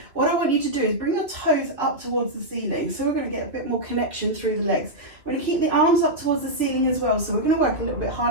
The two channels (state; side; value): late; left; 2.4 ms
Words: what I want you to do is bring your toes up towards the ceiling. So we're going to get a bit more connection through the legs. We're going to keep the arms up towards the ceiling as well. So we're going to work a little bit